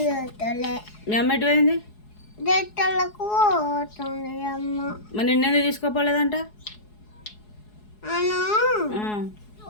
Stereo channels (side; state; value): right; late; 4.7 ms